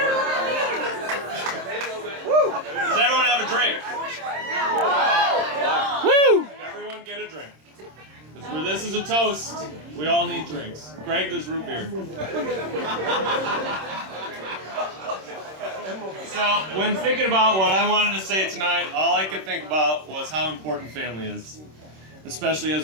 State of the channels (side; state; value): left; late; 26 ms